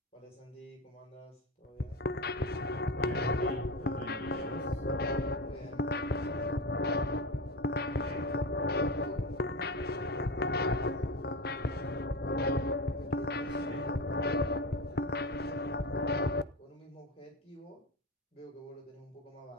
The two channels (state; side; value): normal; both; correlation 0.21